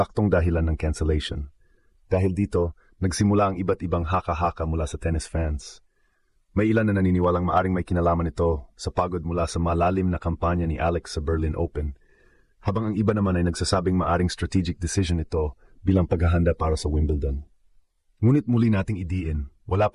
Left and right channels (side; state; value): both; identical; correlation 1.00